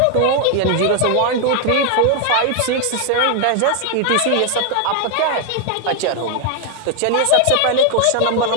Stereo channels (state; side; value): different; both; correlation 0.00